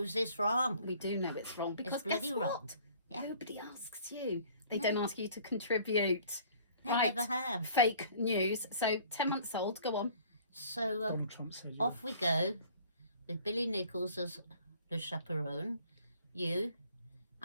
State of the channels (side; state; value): both; inverted; correlation -0.53